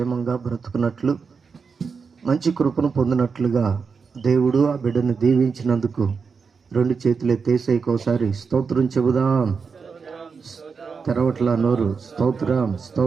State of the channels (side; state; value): left; quieter; 5.4 dB